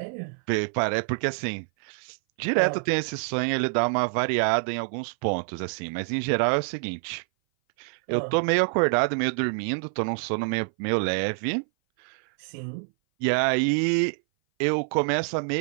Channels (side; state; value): left; silent; 59 dB below the other